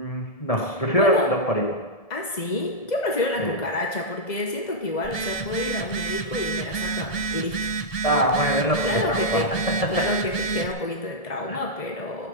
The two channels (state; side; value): late; right; 1.7 ms